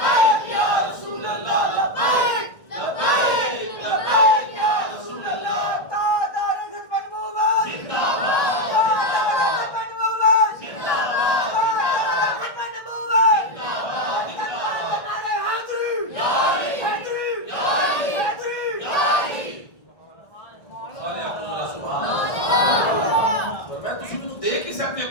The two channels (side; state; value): right; late; 1.6 ms